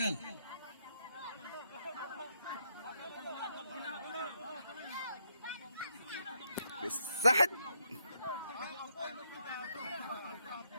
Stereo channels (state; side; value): inverted; both; correlation -0.77